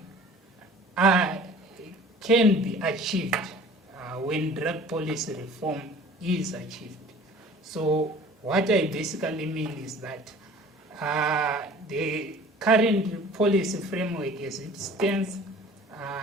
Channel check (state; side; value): normal; both; correlation 0.47